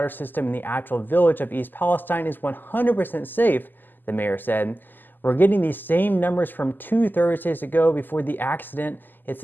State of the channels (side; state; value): right; late; 0.089 ms